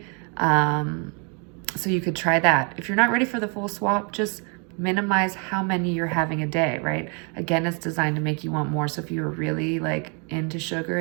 So you could try that. If you're not ready for the full swap, just minimize how many you're having a day, right? Again, it's designed to make you want more. So if you're really like into sugar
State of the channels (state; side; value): quieter; left; 35.2 dB